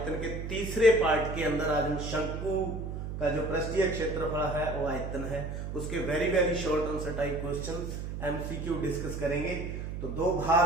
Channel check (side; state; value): right; noise; hum, 6 dB below the sound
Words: के तीसरे पार्ट के अंदर आज हम शंकु का जो पृष्ठीय क्षेत्रफल है वो आयतन है उसके very short answer type questions MCQ discuss करेंगे। तो दो